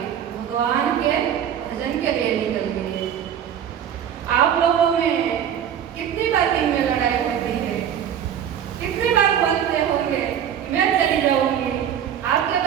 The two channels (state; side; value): quieter; left; 9.3 dB